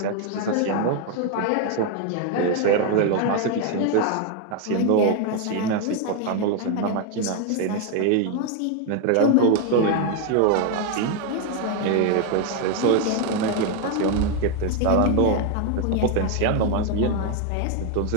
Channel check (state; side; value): different; both; correlation 0.01